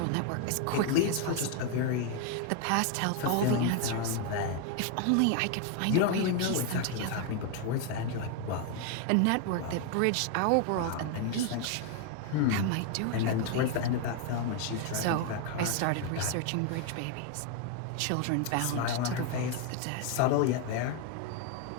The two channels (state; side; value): different; both; correlation 0.01